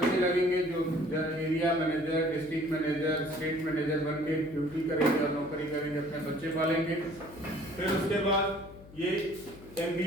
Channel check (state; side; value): noise; left; hum, 19 dB below the sound